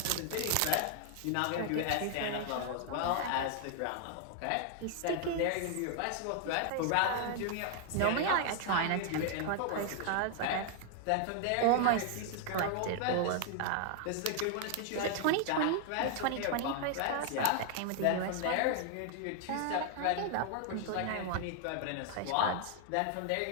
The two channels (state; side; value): different; both; correlation 0.00